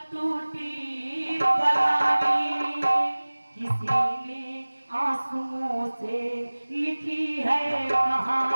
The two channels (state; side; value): inverted; both; correlation -1.00